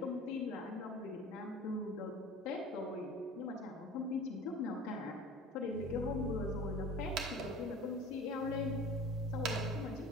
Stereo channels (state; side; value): normal; both; correlation 0.40